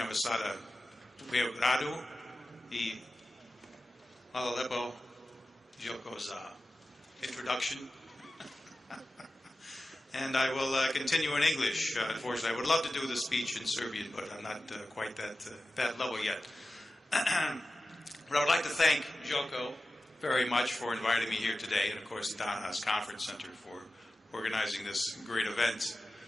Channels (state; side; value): normal; both; correlation 0.95